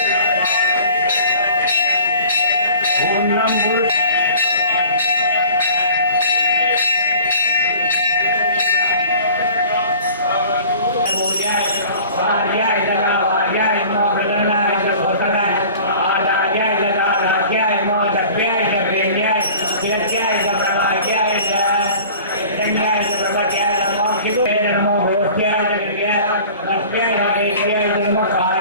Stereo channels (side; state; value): both; inverted; correlation -0.45